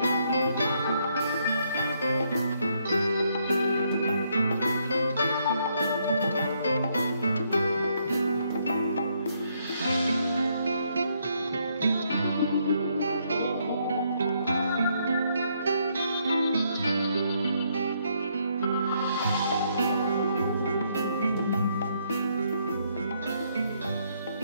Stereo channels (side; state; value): both; inverted; correlation -0.73